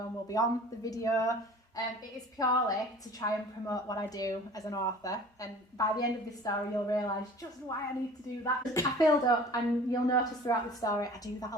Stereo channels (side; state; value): both; normal; correlation 0.45